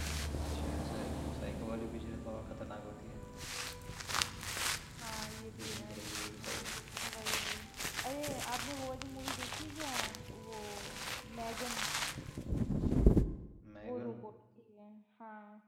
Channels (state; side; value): identical; both; correlation 1.00